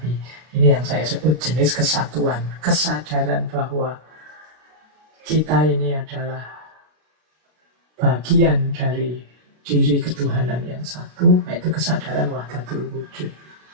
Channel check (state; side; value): late; left; 32 ms